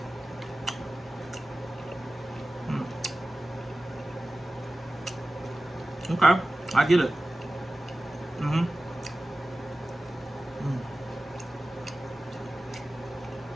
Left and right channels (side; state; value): both; normal; correlation 0.96